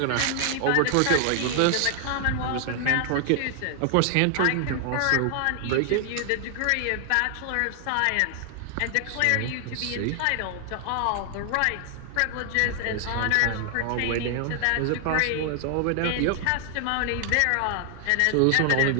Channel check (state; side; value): different; both; correlation 0.00